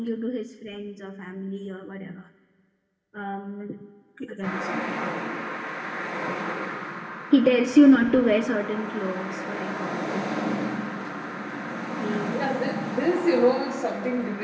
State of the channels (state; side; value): identical; both; correlation 1.00